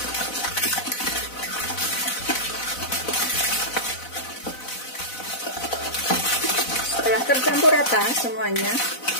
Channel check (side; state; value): right; late; 4.0 ms